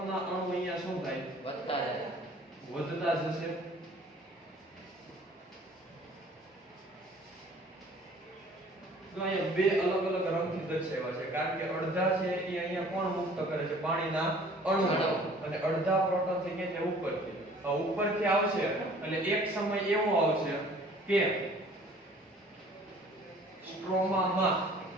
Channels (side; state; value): both; normal; correlation 0.52